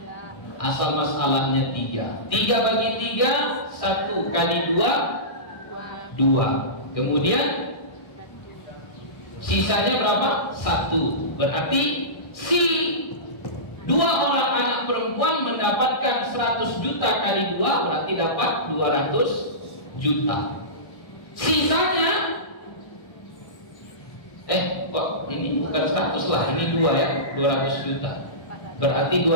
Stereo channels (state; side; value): late; right; 1.6 ms